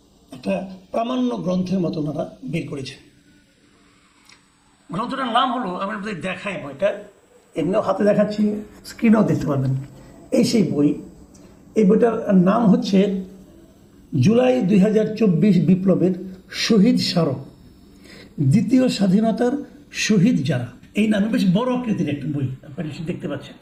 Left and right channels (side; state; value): both; identical; correlation 1.00